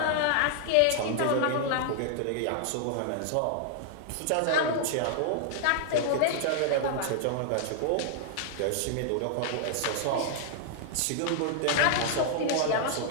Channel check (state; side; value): different; both; correlation -0.01